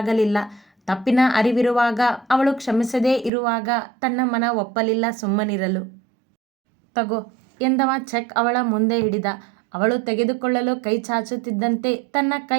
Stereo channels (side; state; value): left; drops out; at 3.3 s